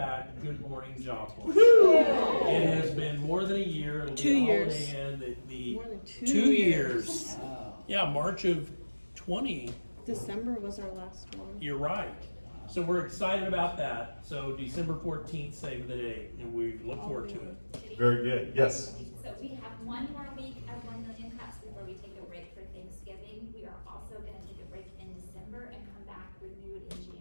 Good Morning Joplin. It has been more than a year. It'll be 2 years. More than 2 years. Yeah, March of 20. December was our last one. You're right. So we're excited about that. So December 14th, save the date, and we look forward to it. Very good. Yes. So we have one more week of 1 Million Cups before we take a break for Thanksgiving. We are also going to take a break in December and come back renewed in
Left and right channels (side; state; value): both; inverted; correlation -1.00